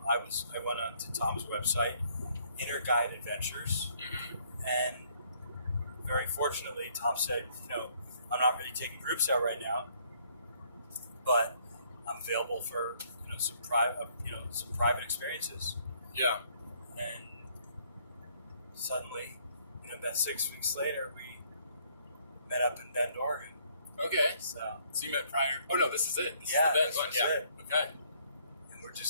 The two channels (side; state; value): both; inverted; correlation -0.65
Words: I went on to Tom's website, Inner Guide Adventures, and very fortunately, Tom said, I'm not really taking groups out right now, but I'm available for some private experiences. Yeah. And suddenly, about 6 weeks later, we met up in Bend, Oregon. Okay. So you met prior? Oh no, this is it. This Yeah, is the Bend this one. was Yeah. it. Okay. and we're